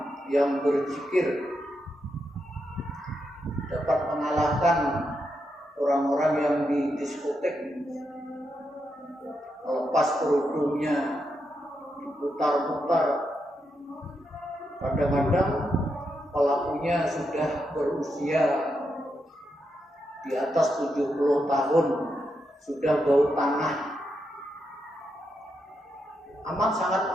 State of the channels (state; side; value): normal; both; correlation 0.83